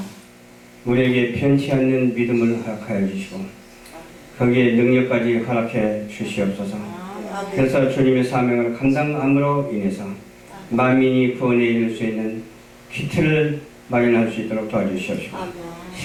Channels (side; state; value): both; identical; correlation 1.00